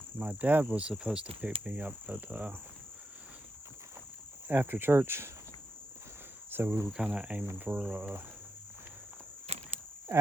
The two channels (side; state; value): both; normal; correlation 0.85